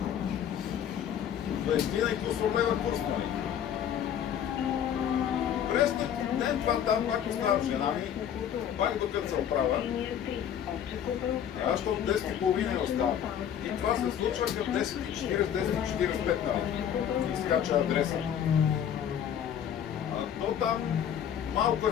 20 и кусор лева курс, нали? През ден това там пак оставам жена ми, пак докато се оправя. Аз от 10:30 я оставам. И това се случва към 10:40, 10:45 нали? Изкача адреса. А то там малко е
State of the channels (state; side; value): quieter; right; 9.3 dB